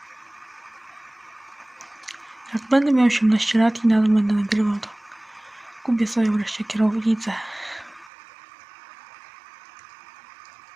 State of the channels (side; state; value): left; drops out; at 8.1 s